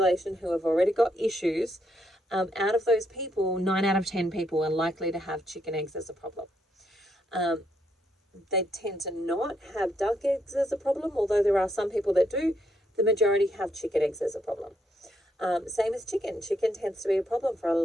who have already got issues. Out of those people, 9 out of 10 people are likely to have chicken eggs as a problem. They tend to not have duck eggs as a problem, although there are some people that do. The majority have chicken eggs as a problem. Same as chicken. Chicken tends to be a problem for a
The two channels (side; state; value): both; normal; correlation 0.76